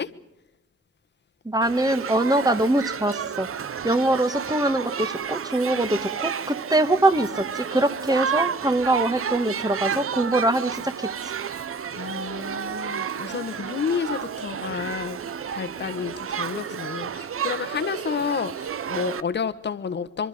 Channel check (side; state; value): both; normal; correlation 0.49